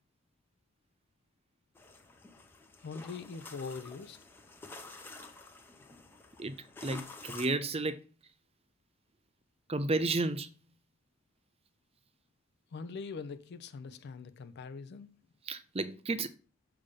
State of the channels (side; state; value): both; normal; correlation 0.50